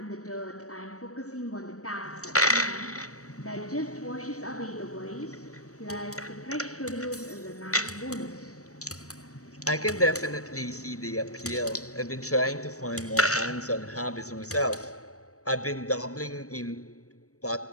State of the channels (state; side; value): late; right; 0.65 ms